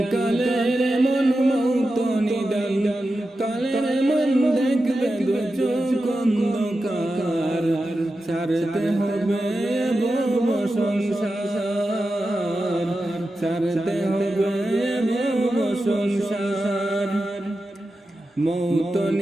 কালের মন, মৌত নিদান কালের মন, দেখবে দু চোখ অন্ধকার, ছাড়তে হবে ভব সংসার, ছাড়তে হবে ভব সংসার। মৌত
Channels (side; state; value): both; normal; correlation 0.91